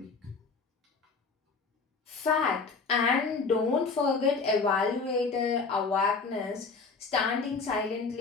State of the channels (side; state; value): right; quieter; 4.5 dB